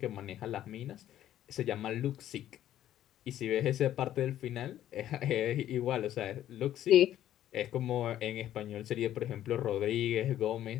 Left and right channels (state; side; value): quieter; right; 12.1 dB